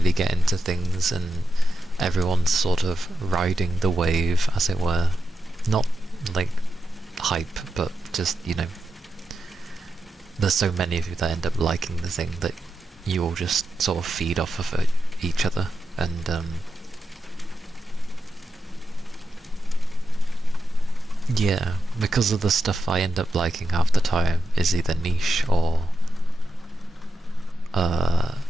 get into things and everyone's sort of riding the wave, as it were. Not like hype, but just, you know, there's so many of you that end up liking the thing that you all just sort of feed off of each other, and yeah, because of the stuff I end up liking half the time is either niche or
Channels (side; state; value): both; normal; correlation 0.88